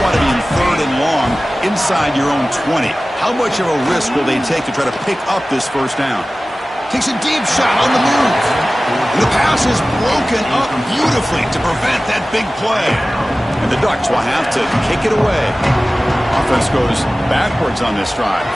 to be in third and long inside your own 20. How much of a risk will they take to try to pick up this first down? Takes a deep shot on the move. And the pass is broken up beautifully to prevent that big play. And the Ducks will have to kick it away. Offense goes backwards on this drive.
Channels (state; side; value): normal; both; correlation 0.97